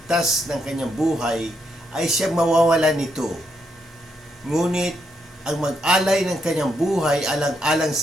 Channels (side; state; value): both; normal; correlation 0.79